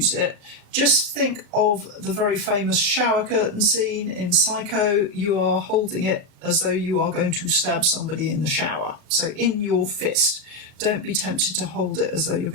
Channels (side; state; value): left; late; 38 ms